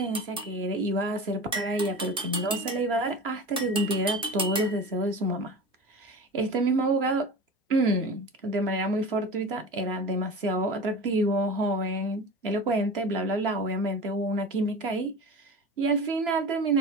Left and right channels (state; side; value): normal; both; correlation 0.33